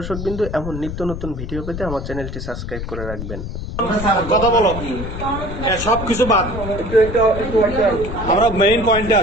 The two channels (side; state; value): left; noise; rumble, 7 dB below the sound